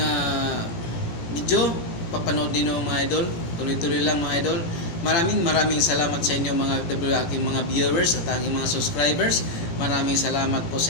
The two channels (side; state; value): right; late; 18 ms